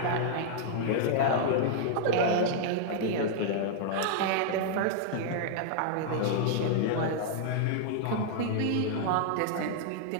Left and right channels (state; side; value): different; both; correlation -0.01